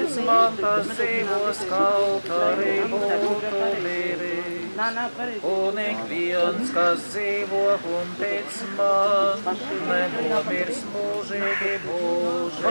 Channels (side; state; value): both; inverted; correlation -1.00